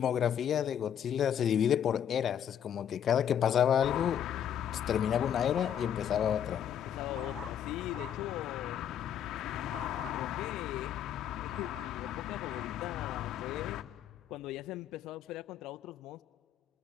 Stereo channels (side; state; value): right; quieter; 9.4 dB